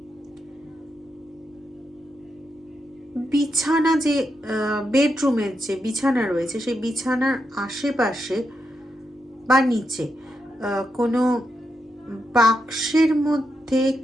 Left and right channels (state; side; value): normal; both; correlation 0.84